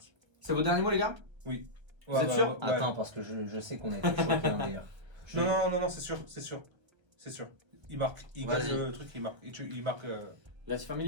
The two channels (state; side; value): late; left; 1.3 ms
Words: C'est vos derniers mots les gars? Oui. Vous êtes sûr? Attends, parce que je sais qu'on a été choqués hein, d'ailleurs. Non, c'est sûr, c'est sûr. C'est sûr. il marque. Il Vas-y. gagne le truc, il marque. Il marque. La Team